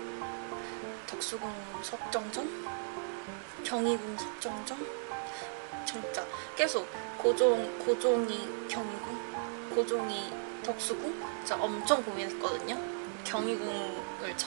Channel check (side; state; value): left; silent; digital silence